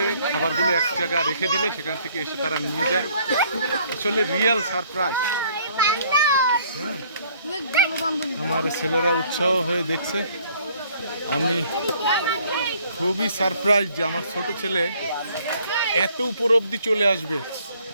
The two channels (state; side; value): inverted; both; correlation -0.61